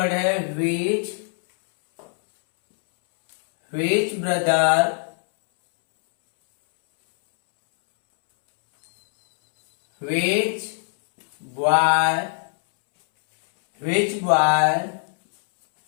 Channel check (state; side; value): silent; right; 65 dB below the other